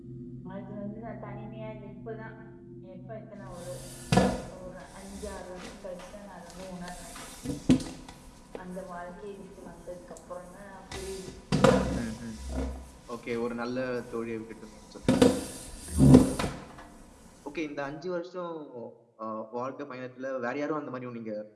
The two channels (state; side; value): identical; both; correlation 1.00